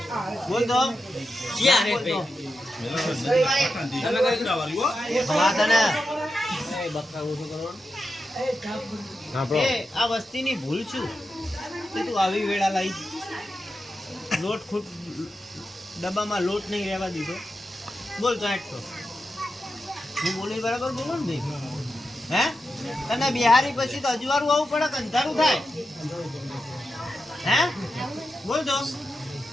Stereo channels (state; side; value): normal; both; correlation 0.89